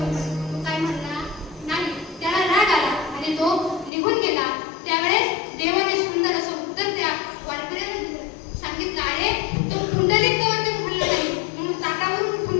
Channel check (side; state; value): right; drops out; at 3.9 s